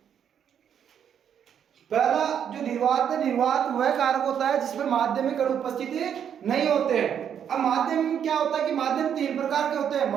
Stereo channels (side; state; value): left; quieter; 8.6 dB